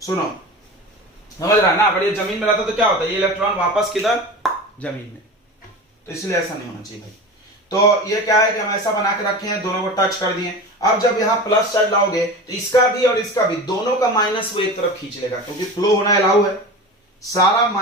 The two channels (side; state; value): both; normal; correlation 0.31